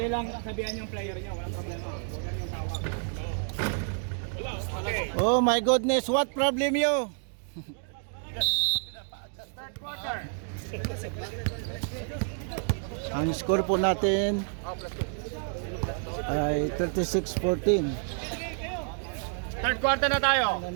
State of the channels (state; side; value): silent; left; 56 dB below the other